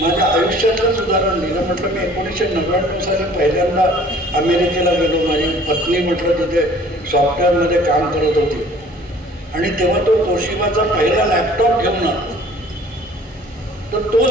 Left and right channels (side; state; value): both; normal; correlation 0.52